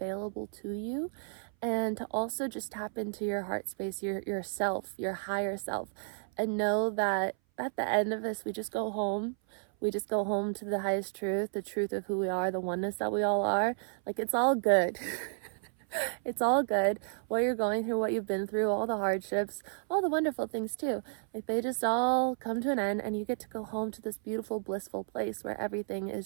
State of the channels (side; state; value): left; silent; 56 dB below the other